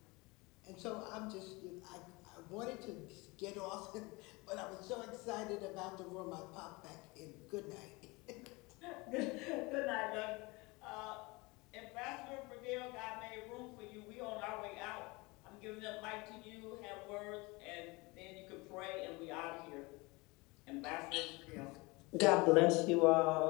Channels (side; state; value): right; quieter; 25.0 dB